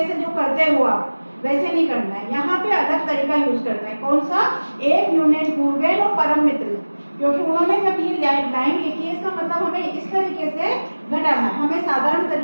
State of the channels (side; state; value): both; inverted; correlation -1.00